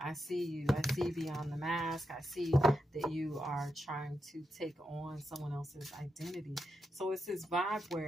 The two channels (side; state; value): both; normal; correlation 0.85